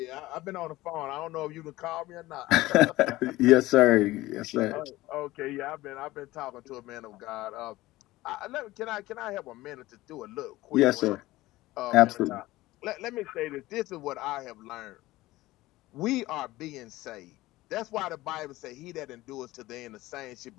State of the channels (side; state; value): right; quieter; 17.9 dB